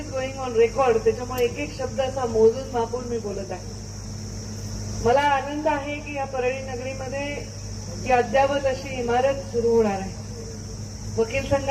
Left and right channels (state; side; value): identical; both; correlation 1.00